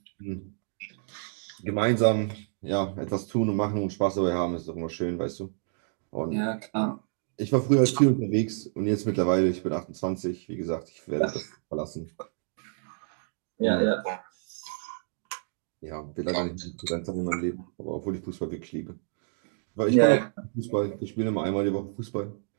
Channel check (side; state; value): left; silent; digital silence